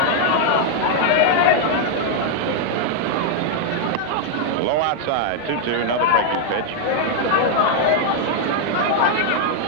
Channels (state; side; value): different; both; correlation 0.00